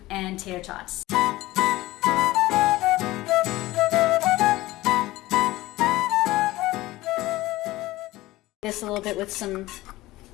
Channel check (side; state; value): right; quieter; 18.1 dB